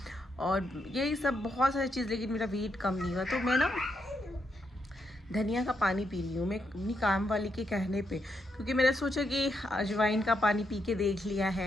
और यही सब बहुत सारी चीज़, लेकिन मेरा वेट कम नहीं हुआ। तो मैं ना धनिया का पानी पी रही हूँ मैं अपनी काम वाली के कहने पे, क्योंकि मैंने सोचा कि अजवाइन का पानी पी के देख लिया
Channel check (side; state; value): both; normal; correlation 0.80